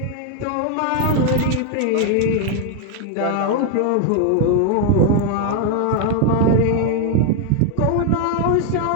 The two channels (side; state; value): both; different; correlation 0.01